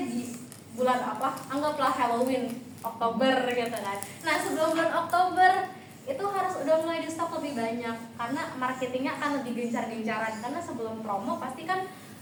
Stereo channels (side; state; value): both; identical; correlation 1.00